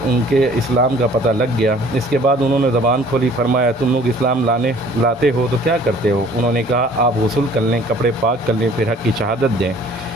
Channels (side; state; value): both; normal; correlation 0.53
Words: ان کے اسلام کا پتہ لگ گیا۔ اس کے بعد انہوں نے زبان کھولی، فرمایا تم لوگ اسلام لاتے ہو تو کیا کرتے ہو؟ انہوں نے کہا آپ غسل کر لیں، کپڑے پاک کر لیں، پھر حق کی شہادت دیں،